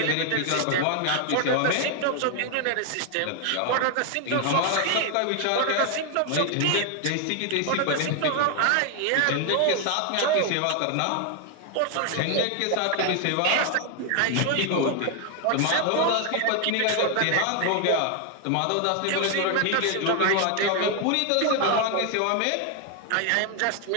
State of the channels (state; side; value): different; both; correlation 0.00